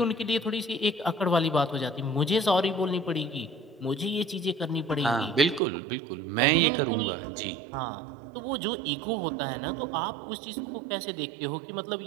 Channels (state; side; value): drops out; left; at 5.6 s